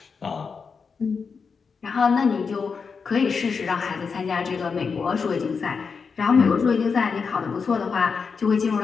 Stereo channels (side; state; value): right; quieter; 5.5 dB